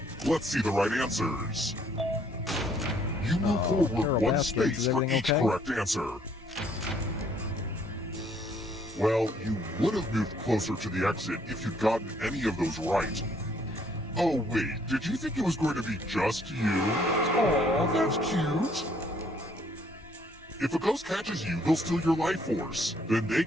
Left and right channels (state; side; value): normal; both; correlation 0.65